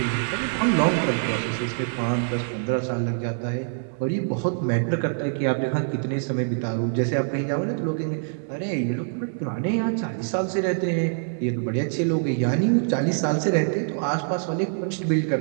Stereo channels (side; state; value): left; silent; digital silence